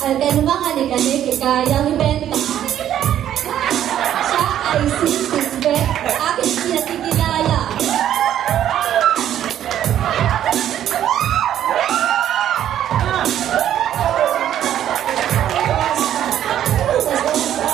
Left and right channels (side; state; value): left; quieter; 11.0 dB